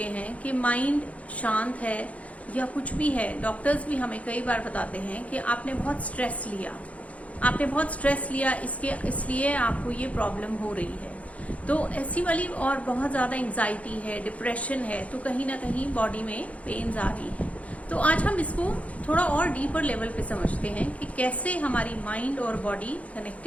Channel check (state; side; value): late; right; 0.066 ms